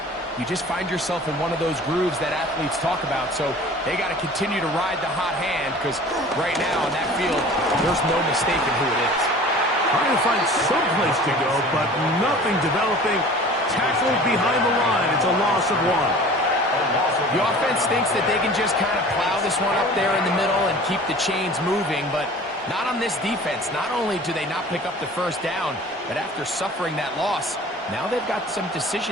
you just find yourself in one of those grooves that athletes talk about. So they got to continue to ride the hot hand, because right now on that field, there's no mistaking who it is. Trying to find some place to go, but nothing developing. Tackled behind the line. It's a loss of 1. The offense thinks that they can just kind of plow this one up there in the middle and keep the chains moving, but not on this defense. Not only do they not pick up the first down, but after suffering that loss, now they've got some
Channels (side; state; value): both; normal; correlation 0.44